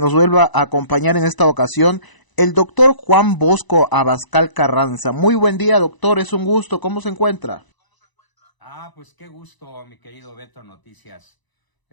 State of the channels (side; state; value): right; late; 1.0 ms